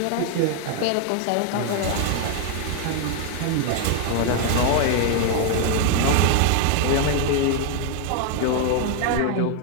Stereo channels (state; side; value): different; both; correlation 0.00